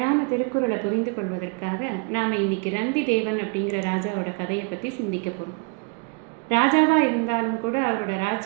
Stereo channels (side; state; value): left; quieter; 33.4 dB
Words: திருக்குறளை புரிந்து கொள்வதற்காக நாம் இன்னைக்கு ரந்தி தேவன் அப்படிங்கிற ராஜாவோட கதையை பற்றி சிந்திக்க போகிறோம். ராஜாவாக இருந்தாலும் கூட அவரோட